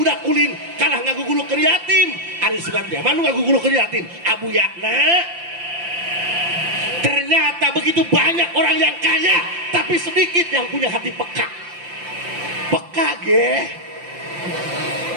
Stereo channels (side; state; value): left; late; 5.8 ms